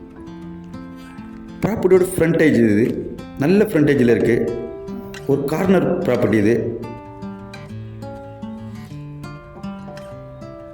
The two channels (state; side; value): identical; both; correlation 1.00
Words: ப்ராப்பர்ட்டியோட ஃப்ரண்டேஜ் இது நல்ல ஃப்ரண்டேஜில் இருக்குது. ஒரு கார்னர் ப்ராப்பர்ட்டி இது.